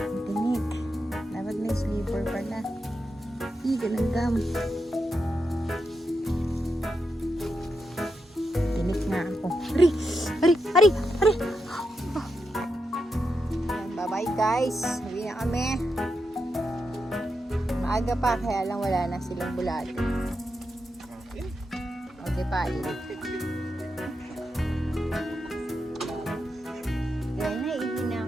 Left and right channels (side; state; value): both; normal; correlation 0.86